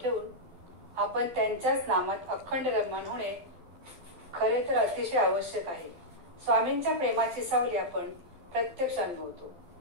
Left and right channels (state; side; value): late; left; 12 ms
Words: ठेवून आपण त्यांच्याच नामात अखंड रममाण होणे खरे तर अतिशय आवश्यक आहे। स्वामींच्या प्रेमाची सावली आपण प्रत्यक्ष अनुभवतो,